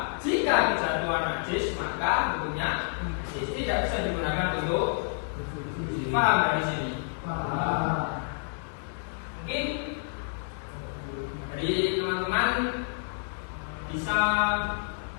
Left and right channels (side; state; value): right; silent; digital silence